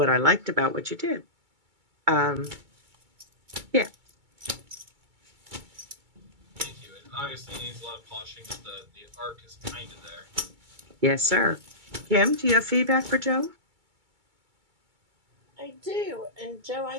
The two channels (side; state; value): left; late; 2.3 ms